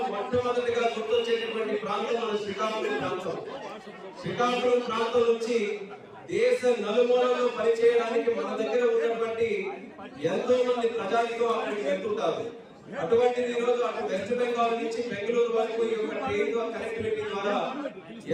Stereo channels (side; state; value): both; identical; correlation 1.00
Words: మొట్టమొదటిగా గుర్తొచ్చేటటువంటి ప్రాంతం మన శ్రీకాకుళం ప్రాంతం. శ్రీకాకుళం ప్రాంతం నుంచి దేశ నలుమూలలో పనిచేయడానికి మన దగ్గర ఉన్నటువంటి ఎంతో మంది ప్రజానికం అక్కడికి వెళ్తుంటారు. అటువంటిది ఈరోజు అటు వెస్ట్ బెంగాల్ నుంచి బెంగళూరు వరకు ఈ యొక్క ట్రైన్ కనెక్టివిటీ ద్వారా